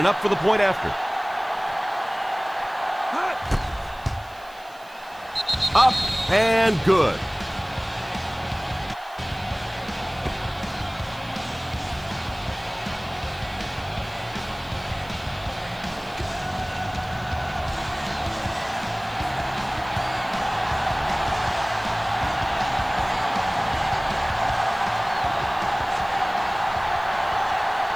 up for the point after. Up and good.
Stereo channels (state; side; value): noise; right; hiss, 25 dB below the sound